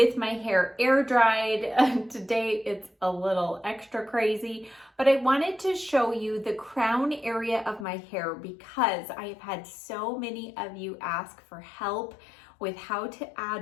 my hair air dried. Today it's a little extra crazy, but I wanted to show you the crown area of my hair because I have had so many of you ask for help with how to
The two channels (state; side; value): drops out; right; at 7.9 s